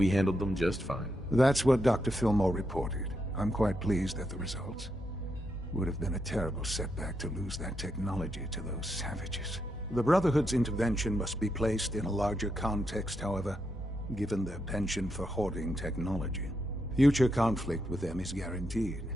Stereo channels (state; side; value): normal; both; correlation 0.82